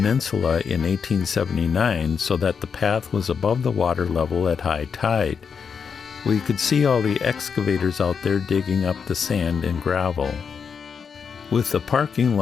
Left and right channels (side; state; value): right; quieter; 6.3 dB